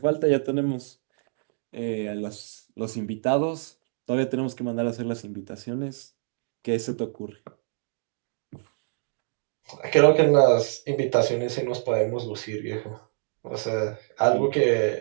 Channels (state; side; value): silent; left; digital silence